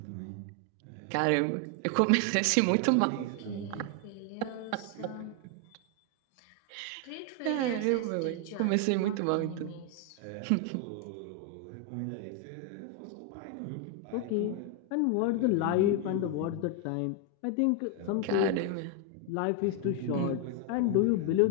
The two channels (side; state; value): both; different; correlation 0.01